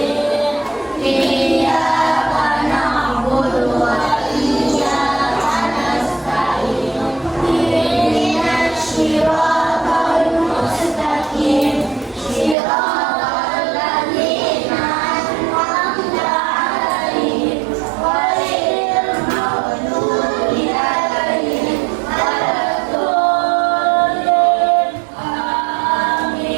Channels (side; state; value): left; drops out; at 12.6 s